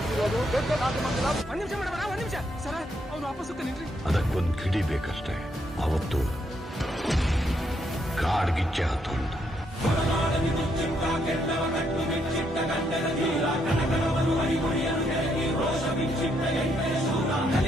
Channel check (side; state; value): both; normal; correlation 0.75